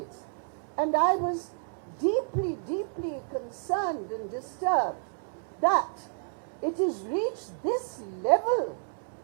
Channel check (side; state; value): left; silent; digital silence